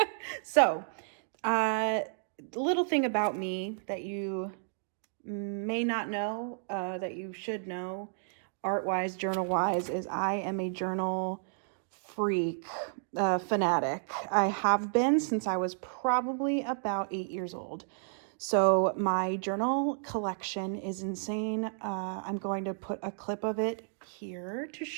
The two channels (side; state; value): left; silent; digital silence